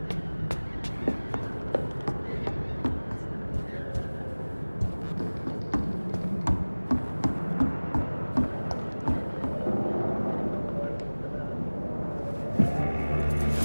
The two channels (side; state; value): both; inverted; correlation -1.00